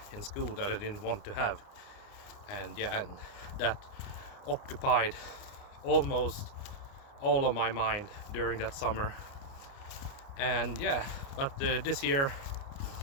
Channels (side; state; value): right; late; 29 ms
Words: school that I didn't want to have, and yeah, and that occupied almost all of my mind during that summer. And yeah, but this year